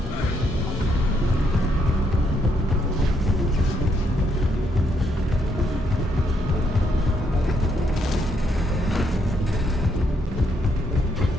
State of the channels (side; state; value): both; normal; correlation 0.74